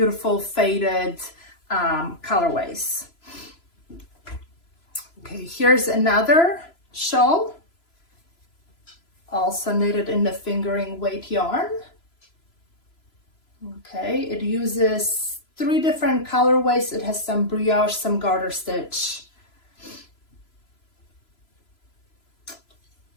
faded colorways. Okay, here's another shawl, also knitted in the fingering weight yarn. Okay, it uses 3 different colorways. It has some brioche, some garter stitch.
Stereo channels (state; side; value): late; right; 3.0 ms